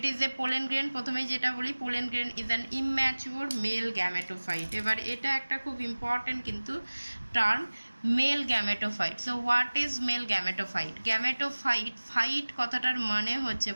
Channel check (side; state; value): both; inverted; correlation -1.00